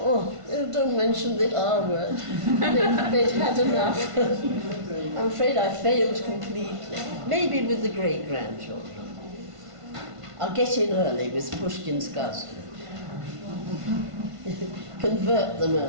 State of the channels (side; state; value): left; late; 1.5 ms